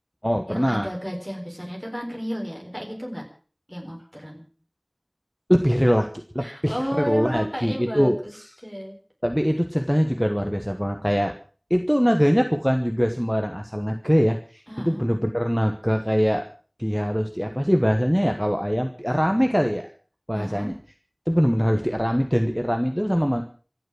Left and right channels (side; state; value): both; identical; correlation 1.00